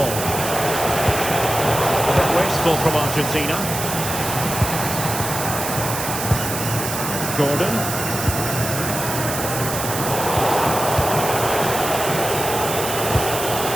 A bit wasteful from Argentina. Gordon.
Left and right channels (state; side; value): noise; right; hiss, 5 dB below the sound